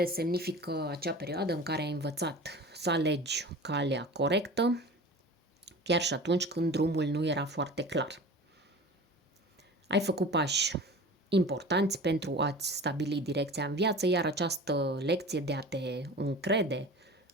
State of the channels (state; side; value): normal; both; correlation 0.37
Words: semnifică acea perioadă în care ai învățat să alegi calea corectă, chiar și atunci când drumul nu era foarte clar. Ai făcut pași importanți pentru a-ți stabili direcția în viață, iar această lecție de a te încrede